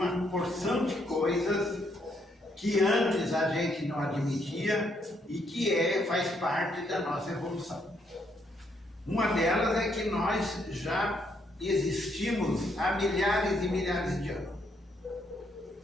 porção de coisas que antes a gente não admitia e que faz parte da nossa evolução. Uma delas é que nós já existimos há milhares e milhares de anos.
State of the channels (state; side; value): normal; both; correlation 0.73